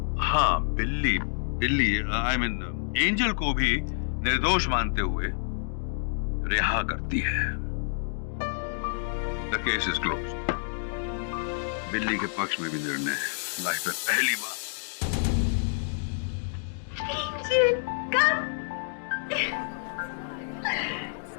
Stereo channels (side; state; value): right; silent; digital silence